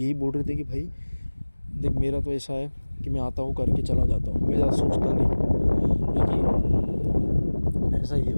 बोल रहे थे कि भाई देख मेरा तो ऐसा है कि मैं आता हूँ करके चला जाता हूँ, मैं ज़्यादा सोचता नहीं. क्योंकि ऐसा ही है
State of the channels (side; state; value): both; inverted; correlation -1.00